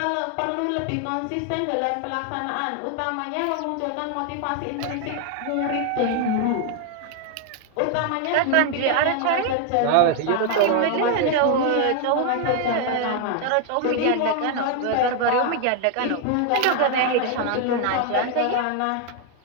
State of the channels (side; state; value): both; different; correlation 0.00